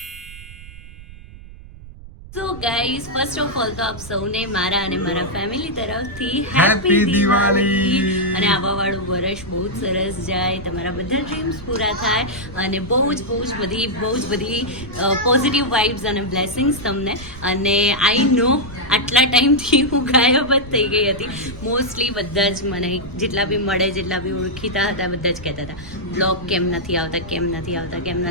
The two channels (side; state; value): right; noise; rumble, 17 dB below the sound